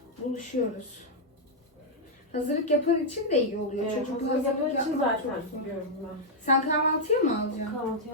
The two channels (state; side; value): normal; both; correlation -0.03